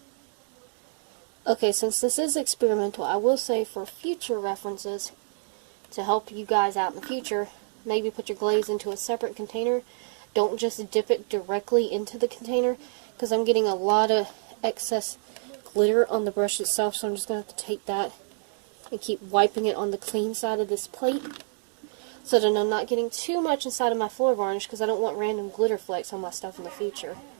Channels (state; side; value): silent; left; digital silence